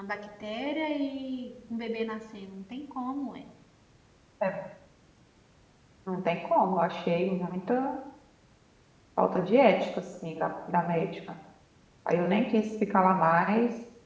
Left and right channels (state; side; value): identical; both; correlation 1.00